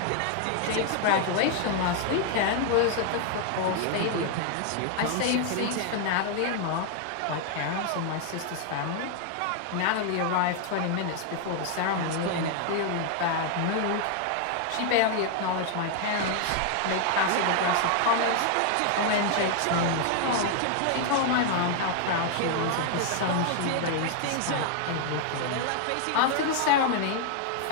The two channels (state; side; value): different; both; correlation 0.00